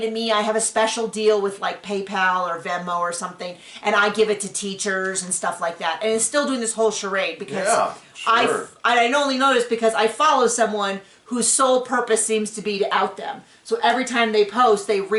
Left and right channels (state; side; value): identical; both; correlation 1.00